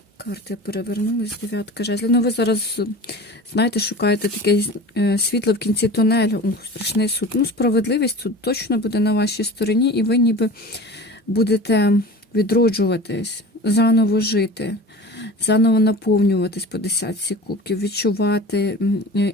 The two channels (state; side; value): normal; both; correlation 0.37